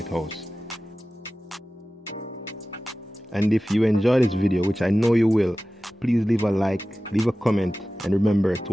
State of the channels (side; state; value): both; normal; correlation 0.95